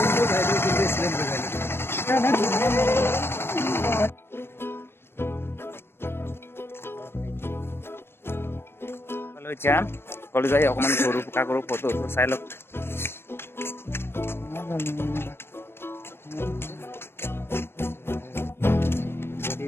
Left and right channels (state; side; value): late; right; 0.12 ms